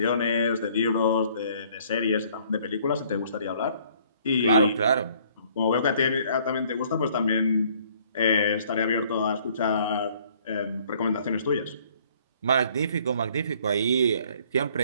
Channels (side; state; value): both; inverted; correlation -0.59